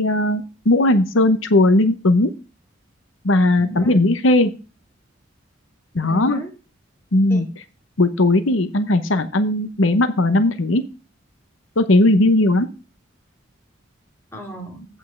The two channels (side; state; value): both; normal; correlation 0.49